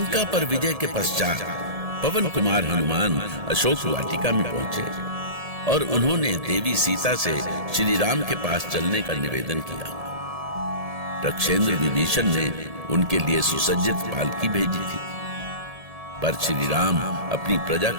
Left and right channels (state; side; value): late; left; 1.7 ms